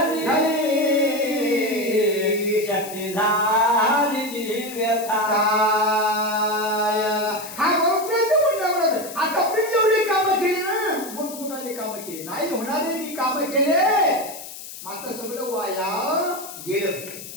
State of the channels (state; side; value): noise; left; hiss, 12 dB below the sound